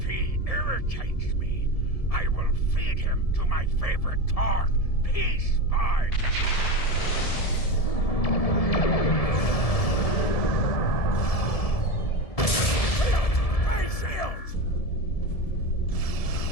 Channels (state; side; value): late; right; 1.6 ms